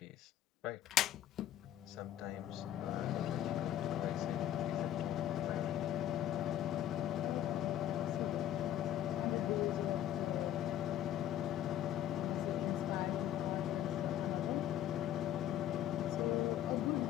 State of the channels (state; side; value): quieter; right; 11.5 dB